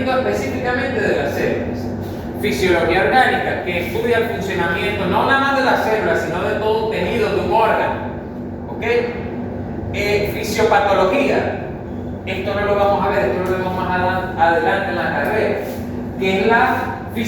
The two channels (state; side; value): identical; both; correlation 1.00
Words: específicamente de las células. Fisiología orgánica, que estudia el funcionamiento no nada más de las células, sino de todo un tejido, de un órgano. ¿Ok? Fisiopatología, esto no lo vamos a ver, esto lo vemos más adelante en la carrera, que es la